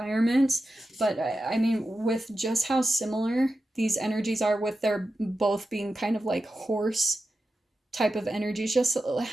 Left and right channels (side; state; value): both; normal; correlation 0.91